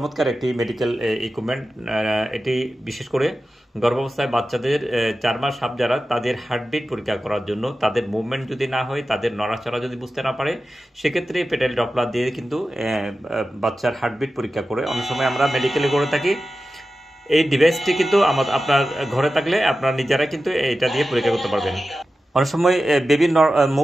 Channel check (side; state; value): both; normal; correlation 0.93